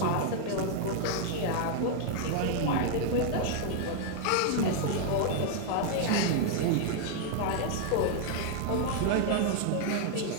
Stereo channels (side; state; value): both; different; correlation 0.00